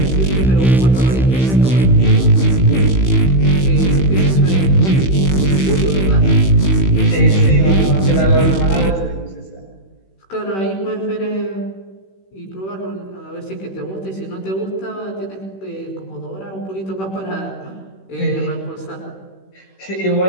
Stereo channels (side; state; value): right; late; 16 ms